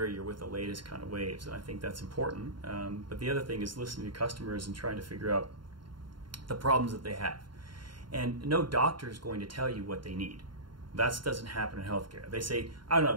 you're with the latest kind of waves, and I think that's important. But the other thing is listening to customers and trying to figure out the problems that they have. And no doctor is going to tell you what they need. That doesn't happen in healthcare. They say, I don't know,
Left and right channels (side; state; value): left; late; 0.72 ms